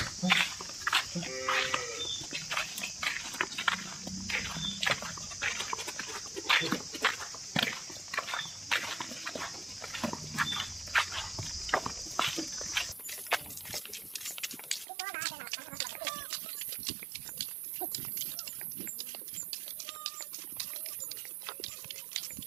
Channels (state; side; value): drops out; left; at 14.9 s